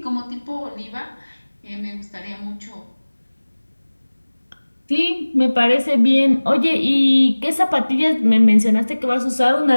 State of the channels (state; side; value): inverted; both; correlation -1.00